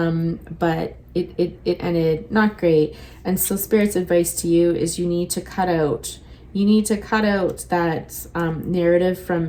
it ended not great. And so Spirit's advice to you is you need to cut out that narrative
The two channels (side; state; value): both; identical; correlation 1.00